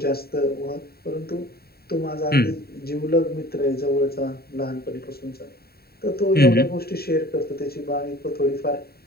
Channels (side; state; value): right; late; 0.45 ms